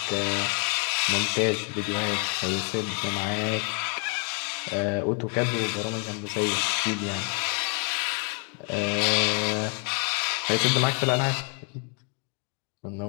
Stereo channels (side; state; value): right; quieter; 39.0 dB